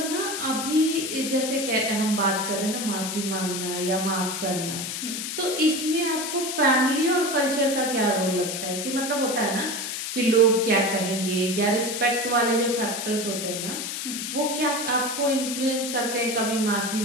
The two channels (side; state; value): left; noise; hiss, 4 dB below the sound